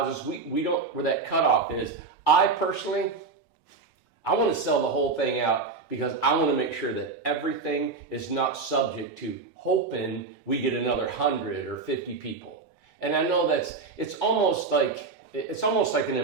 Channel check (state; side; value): quieter; left; 4.3 dB